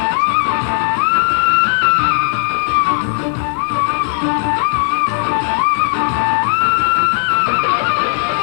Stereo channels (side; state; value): right; silent; digital silence